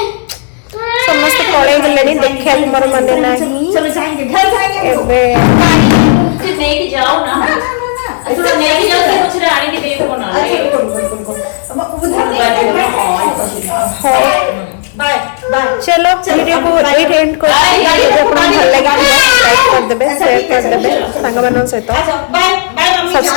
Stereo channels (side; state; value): right; silent; digital silence